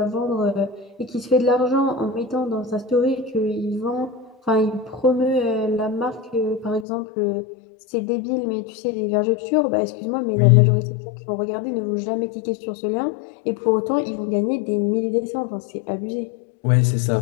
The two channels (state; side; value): drops out; right; at 6.9 s